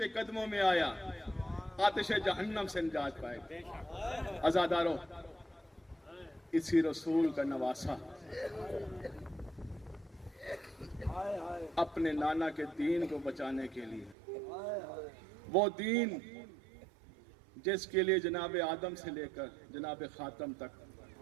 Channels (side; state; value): left; drops out; at 14.2 s